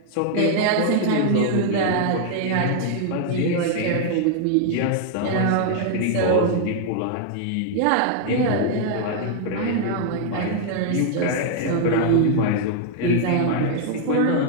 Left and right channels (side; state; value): both; different; correlation 0.00